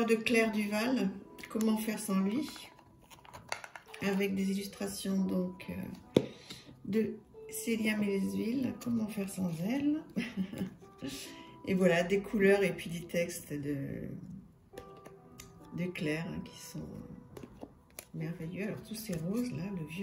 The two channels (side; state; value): both; identical; correlation 1.00